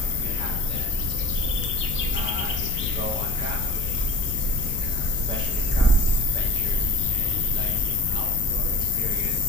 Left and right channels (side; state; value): left; noise; rumble, 7 dB below the sound